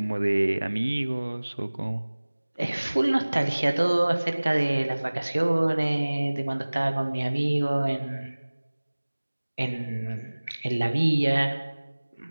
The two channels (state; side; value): inverted; both; correlation -1.00